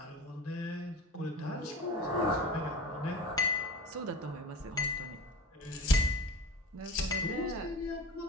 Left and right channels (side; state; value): both; normal; correlation 0.32